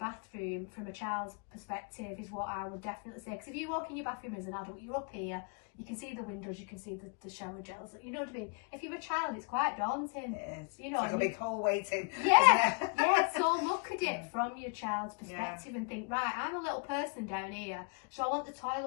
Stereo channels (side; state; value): right; quieter; 39.0 dB